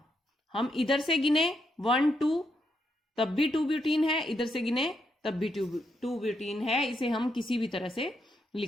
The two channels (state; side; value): normal; both; correlation 0.80